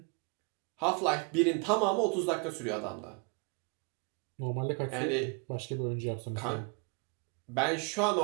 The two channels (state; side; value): quieter; left; 33.8 dB